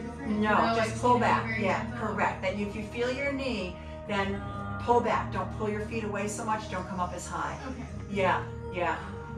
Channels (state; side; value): identical; both; correlation 1.00